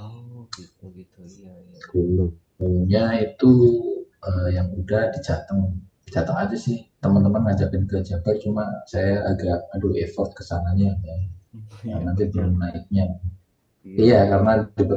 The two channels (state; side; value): identical; both; correlation 1.00